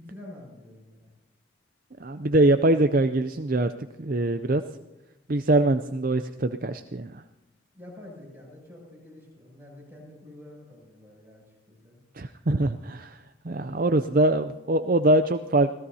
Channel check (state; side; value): normal; both; correlation 0.31